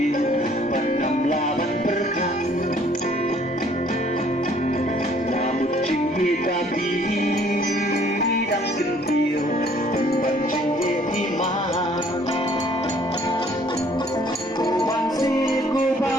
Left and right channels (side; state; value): both; normal; correlation 0.60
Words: Panam laban perkan Namun cinggi tapi Dan gentil Pemban cinggi iman Kuban si